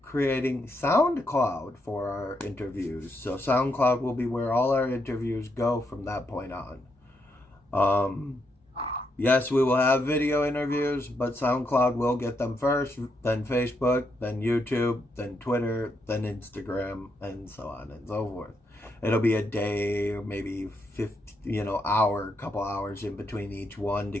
creating SoundCloud for our interviews. So SoundCloud will be where all our interviews go from that point on. Yes, we will have video interviews, but SoundCloud will get them first, then Facebook, then YouTube, then Twitter, then Instagram, and so on and so forth. It'll be a day or maybe 50, couple hours in between each one to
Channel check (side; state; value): both; normal; correlation 0.80